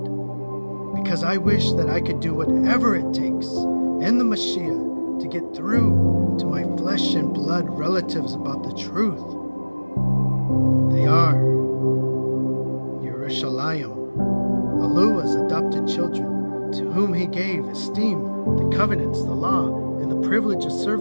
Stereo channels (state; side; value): inverted; both; correlation -1.00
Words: because I wish that I could do whatever it takes in the Mashiach to get through to my flesh and blood relatives about the truth. They are Yerushalayim, Yahuah's adopted children, to whom he gave esteem, the covenants, the law, and the privilege of